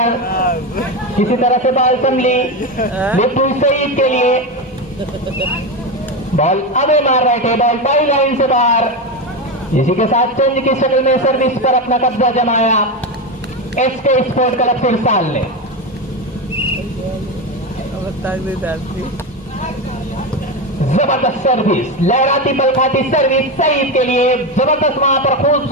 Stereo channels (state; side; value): normal; both; correlation 0.15